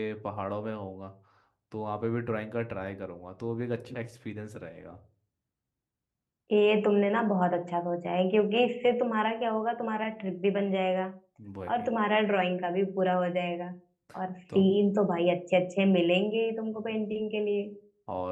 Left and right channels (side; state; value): both; identical; correlation 1.00